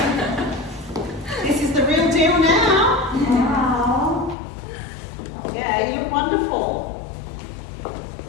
This is the real deal now. Wow. Yeah, you look wonderful.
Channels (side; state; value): right; drops out; at 4.4 s